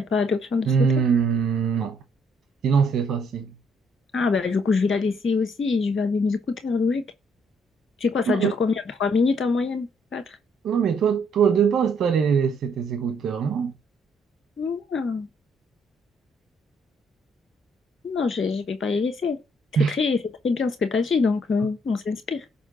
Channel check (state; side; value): normal; both; correlation 0.68